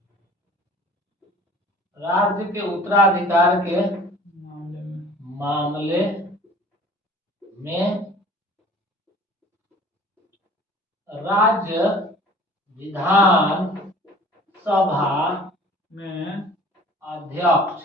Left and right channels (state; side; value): normal; both; correlation 0.47